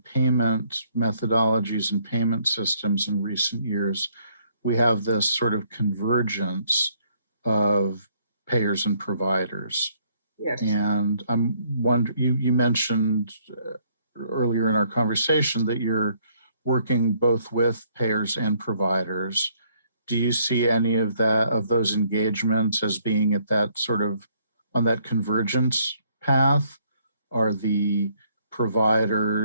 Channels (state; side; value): inverted; both; correlation -0.66